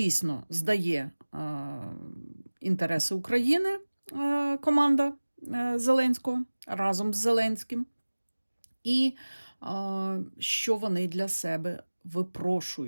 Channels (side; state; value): both; inverted; correlation -1.00